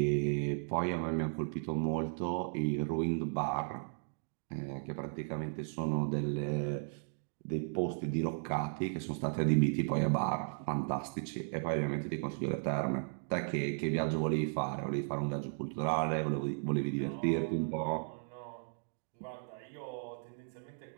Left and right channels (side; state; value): left; silent; digital silence